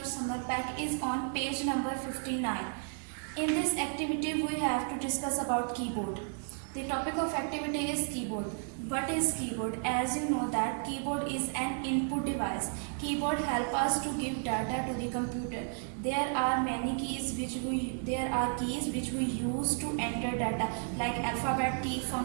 summer pack is on page number 59. In this activity, we have to discuss about keyboard. The topic of activity is keyboard. What is keyboard? As you know that keyboard is an input device. Keyboard help us to give data to the computer. There are keys which we use to enter data, like alphabet key,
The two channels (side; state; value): left; silent; 56 dB below the other